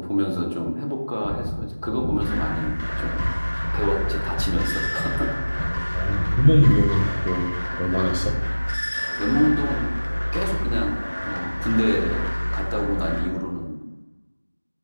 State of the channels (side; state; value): both; inverted; correlation -1.00